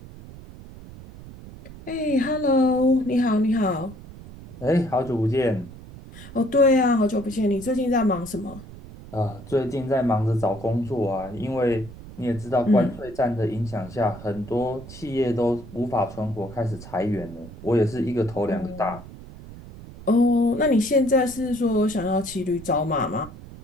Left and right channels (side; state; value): right; noise; rumble, 16 dB below the sound